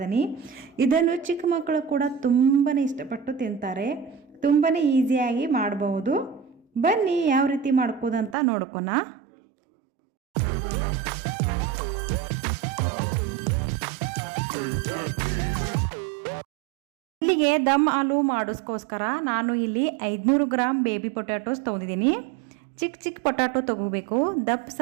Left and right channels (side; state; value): left; drops out; at 8.3 s